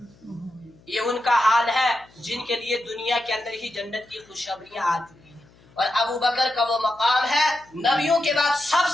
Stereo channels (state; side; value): noise; left; hum, 28 dB below the sound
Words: یہ ان کا حال ہے جن کے لیے دنیا کے اندر ہی جنت کی خوشخبریاں آ چکی ہیں، اور ابو بکر کا وہ مقام ہے نبیوں کے بعد سب